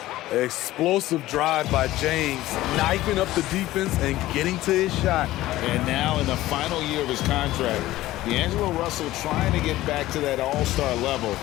Explosive drive by James, knifing up the defense and getting to his shot. And now in the final year of his contract, D'Angelo Russell trying to get back to that all-star level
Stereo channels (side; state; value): right; quieter; 16.1 dB